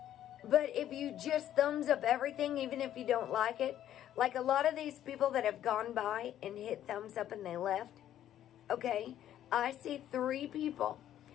But if you just thumbs up everything, even if you don't like it, like a lot of these people that have gone by and hit thumbs up and they left, okay, I see 3 people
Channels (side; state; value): right; quieter; 11.5 dB